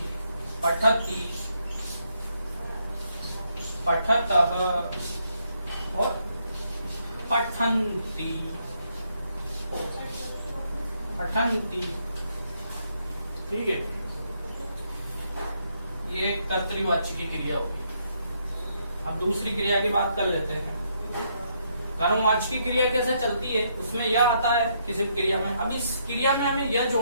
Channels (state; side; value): inverted; both; correlation -0.75